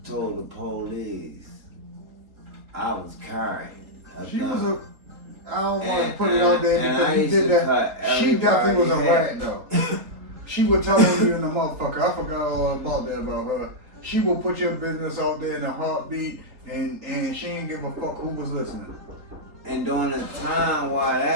told the police I was carrying a She gun. was a. I don't want to put it out there because he did that. She definitely was a rat though. She would tell on you in the motherfucker. I forgot all about that about her. She will put your business out there in a heartbeat, and she ain't give a fuck who was listening. And during the time while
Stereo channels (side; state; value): left; late; 4.0 ms